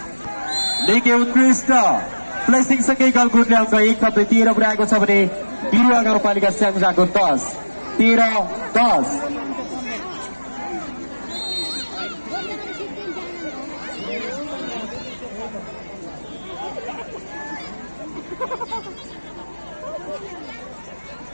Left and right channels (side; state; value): both; inverted; correlation -1.00